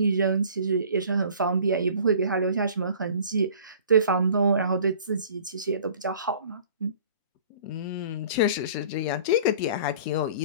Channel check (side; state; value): both; inverted; correlation -0.48